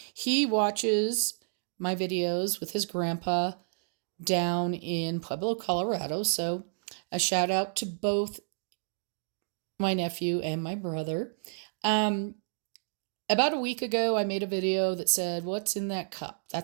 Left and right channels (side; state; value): left; silent; digital silence